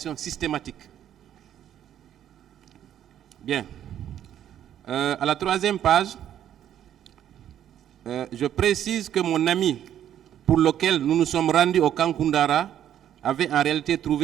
systématique. Bien. À la 3e page, je précise que mon ami pour lequel nous nous sommes rendus au camp Koundara avait en réalité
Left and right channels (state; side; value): quieter; left; 10.6 dB